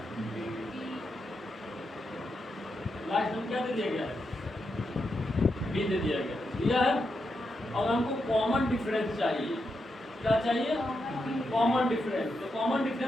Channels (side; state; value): both; normal; correlation 0.85